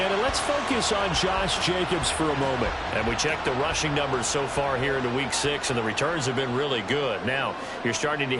and let's focus on Josh Jacobs for a moment. And we checked the rushing numbers so far here into Week 6, and the returns have been really good. Now, you're starting to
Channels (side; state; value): both; identical; correlation 1.00